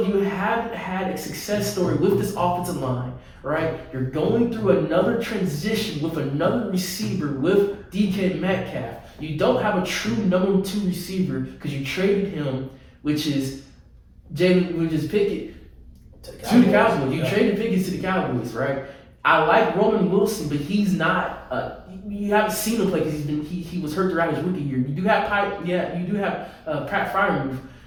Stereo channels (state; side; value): identical; both; correlation 1.00